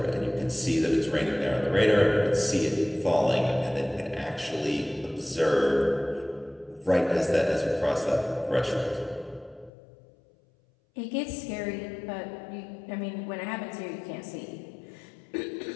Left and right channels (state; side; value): drops out; right; at 9.7 s